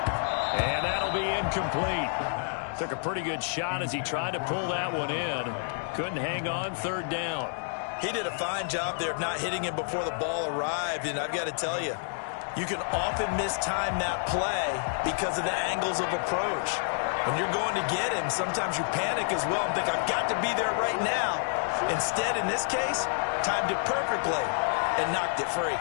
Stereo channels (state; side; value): silent; right; digital silence